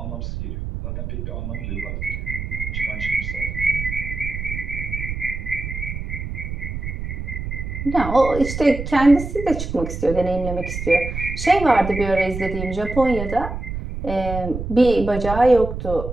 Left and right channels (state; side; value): noise; right; rumble, 6 dB below the sound